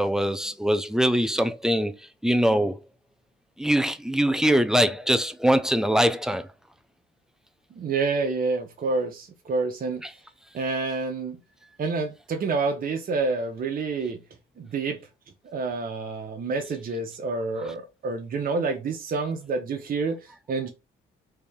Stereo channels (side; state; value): both; normal; correlation 0.71